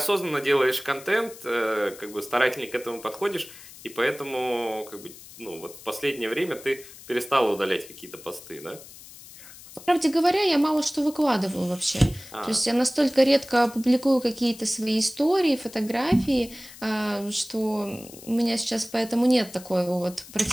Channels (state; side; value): noise; left; hiss, 18 dB below the sound